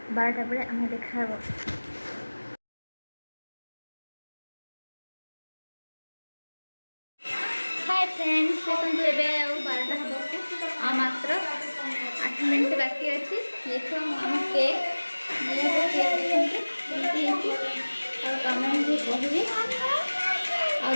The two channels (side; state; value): both; inverted; correlation -1.00